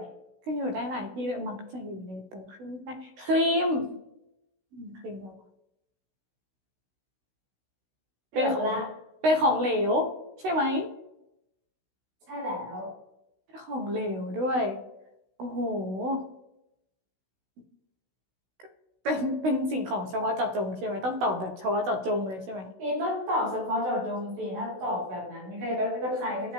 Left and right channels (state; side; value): late; left; 16 ms